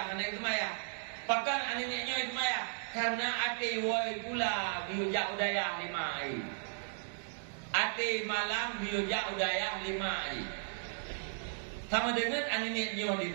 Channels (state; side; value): silent; left; digital silence